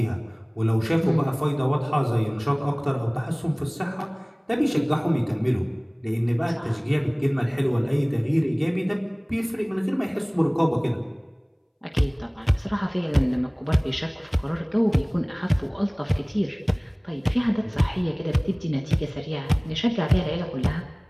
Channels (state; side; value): identical; both; correlation 1.00